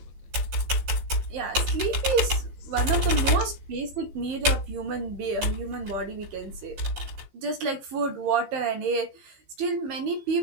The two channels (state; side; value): late; left; 15 ms